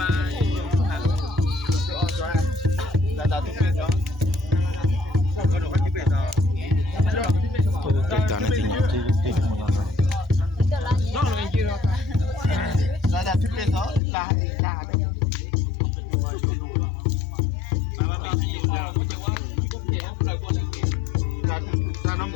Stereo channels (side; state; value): right; drops out; at 14.0 s